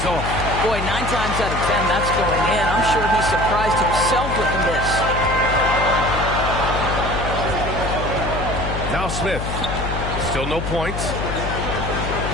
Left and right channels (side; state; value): left; noise; hum, 4 dB below the sound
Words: off. Boy, 9 times out of 10, that's going in. I'm sure he surprised himself with the miss. Now Smith. Still no points.